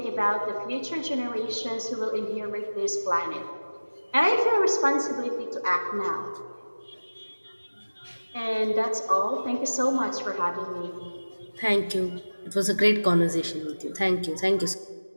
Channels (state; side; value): inverted; both; correlation -1.00